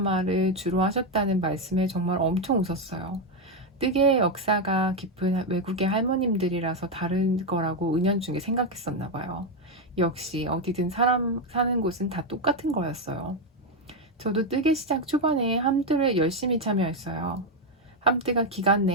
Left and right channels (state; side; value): normal; both; correlation 0.06